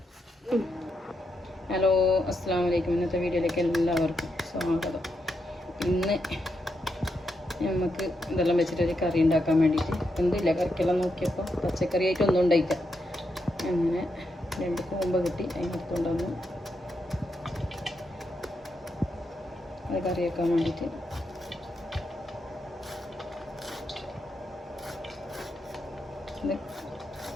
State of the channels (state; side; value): normal; both; correlation 0.83